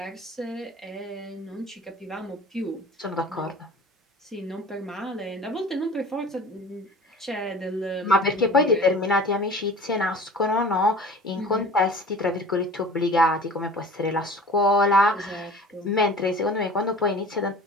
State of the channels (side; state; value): both; normal; correlation 0.42